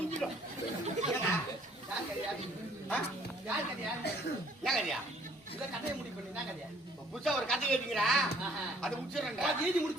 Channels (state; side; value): normal; both; correlation 0.60